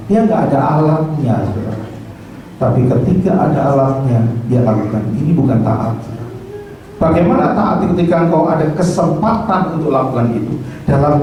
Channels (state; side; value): identical; both; correlation 1.00